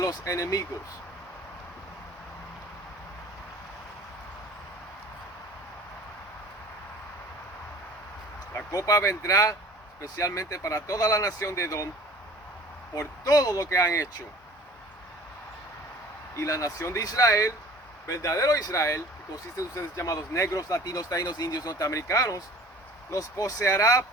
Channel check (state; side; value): normal; both; correlation 0.46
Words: enemigos. La copa vendrá especialmente para toda la nación de Edom por todo lo que han hecho. Y la nación de Israel, verdadero Israel, que consiste de ustedes llamados negros, latinos, taínos, indios, norteamericanos, los poseerá